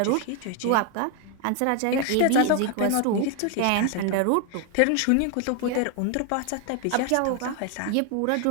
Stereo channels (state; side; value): different; both; correlation 0.00